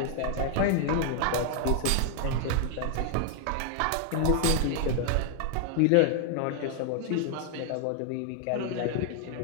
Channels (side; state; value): both; different; correlation 0.00